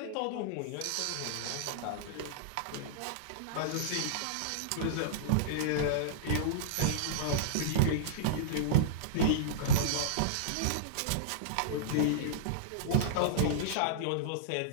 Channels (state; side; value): different; both; correlation -0.02